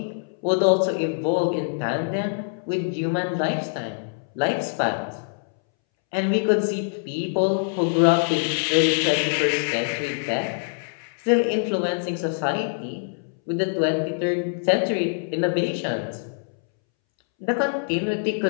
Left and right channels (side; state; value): right; silent; 62 dB below the other